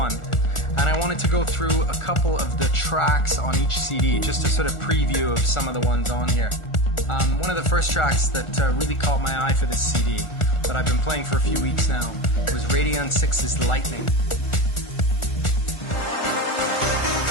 and I wanted to go through a couple of the tracks on each CD, just a sort of preview of some of the ones on here. One of the first tracks that really caught my eye for this CD, that I've been playing for a few weeks now, was Radion 6's Lightning.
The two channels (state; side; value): late; right; 1.4 ms